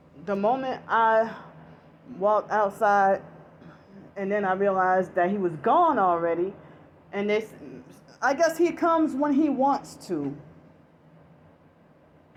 the moment I walked outside, and then I realized that he was gone already, and I guess he comes when he wants to.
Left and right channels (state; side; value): identical; both; correlation 1.00